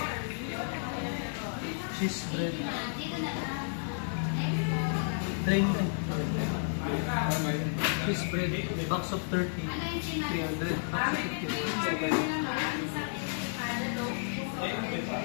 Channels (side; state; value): right; silent; digital silence